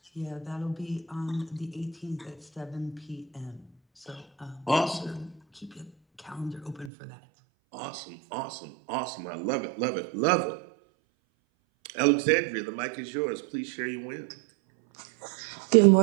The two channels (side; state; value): left; drops out; at 6.9 s